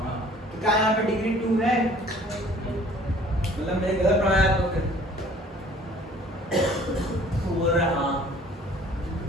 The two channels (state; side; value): normal; both; correlation 0.53